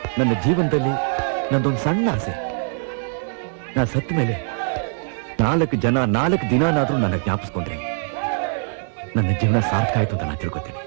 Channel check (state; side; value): silent; left; 64 dB below the other